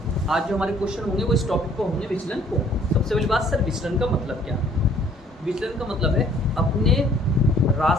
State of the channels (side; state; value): both; normal; correlation 0.59